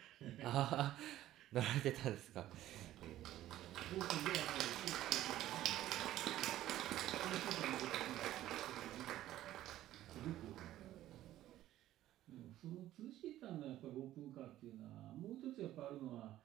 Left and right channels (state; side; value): quieter; left; 13.8 dB